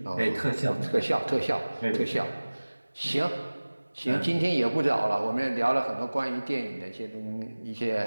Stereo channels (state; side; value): inverted; both; correlation -1.00